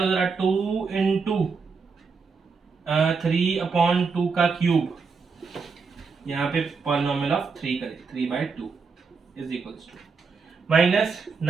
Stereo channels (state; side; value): quieter; left; 5.0 dB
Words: जरा, 2 इंटू 3/2 का क्यूब यहाँ पे पॉलिनोमियल ऑफ 3 करें, 3/2 is equals to minus